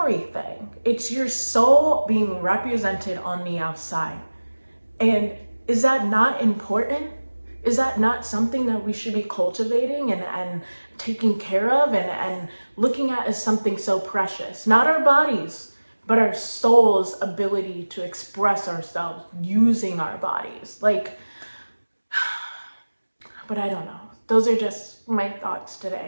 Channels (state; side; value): inverted; both; correlation -1.00